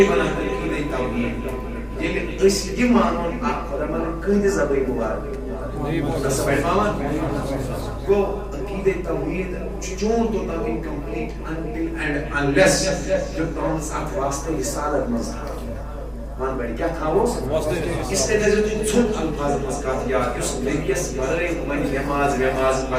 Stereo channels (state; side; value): identical; both; correlation 1.00